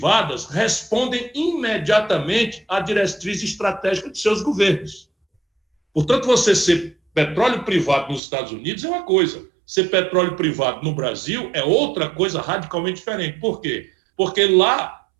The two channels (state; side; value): drops out; left; at 8.2 s